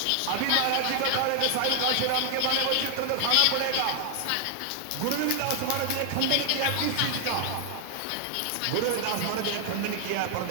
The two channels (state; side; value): different; both; correlation 0.00